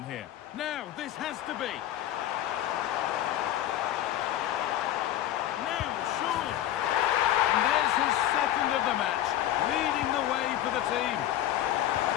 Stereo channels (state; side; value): quieter; right; 12.6 dB